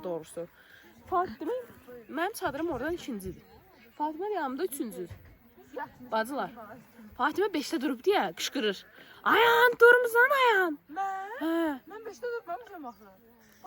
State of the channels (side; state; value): both; identical; correlation 1.00